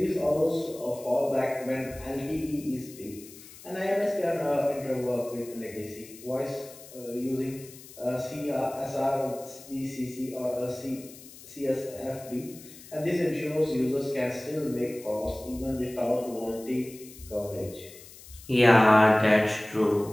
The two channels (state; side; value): noise; left; hiss, 18 dB below the sound